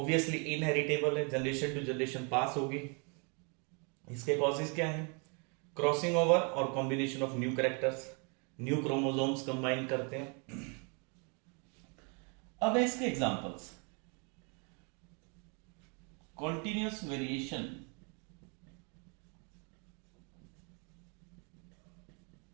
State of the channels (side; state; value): left; quieter; 35.1 dB